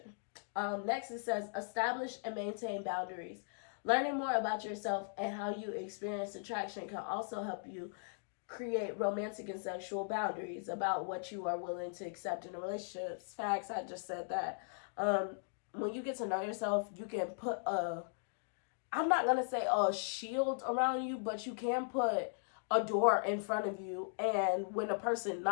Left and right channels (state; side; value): silent; right; digital silence